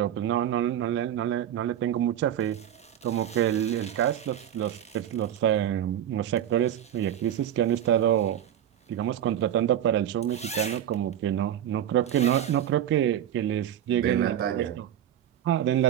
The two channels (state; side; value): quieter; left; 10.6 dB